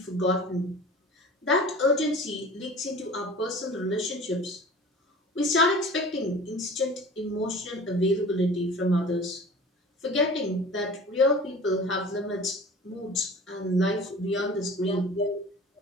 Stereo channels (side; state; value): both; normal; correlation 0.41